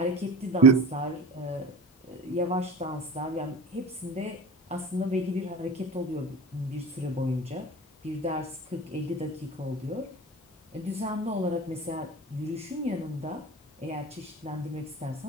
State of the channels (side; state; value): both; normal; correlation 0.34